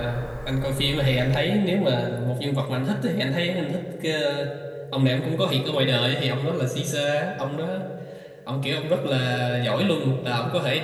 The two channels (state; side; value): identical; both; correlation 1.00